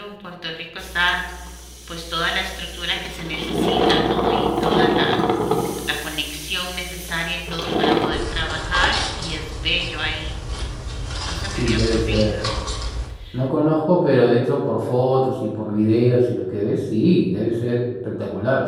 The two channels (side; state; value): both; identical; correlation 1.00